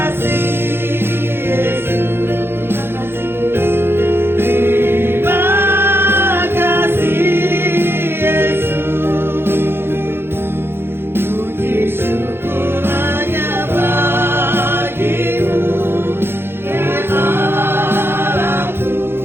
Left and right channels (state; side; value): late; left; 0.11 ms